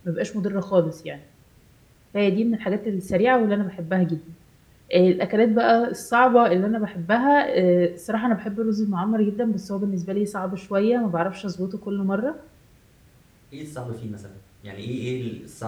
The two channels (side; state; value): both; identical; correlation 1.00